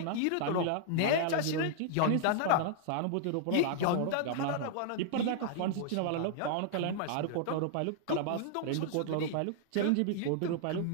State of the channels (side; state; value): both; different; correlation -0.01